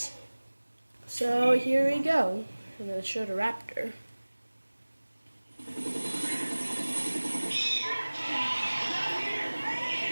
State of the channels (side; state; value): both; inverted; correlation -1.00